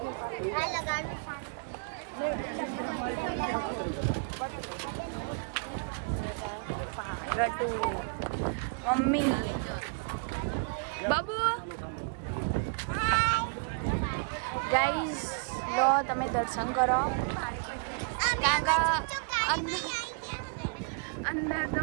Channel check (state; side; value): quieter; left; 38.7 dB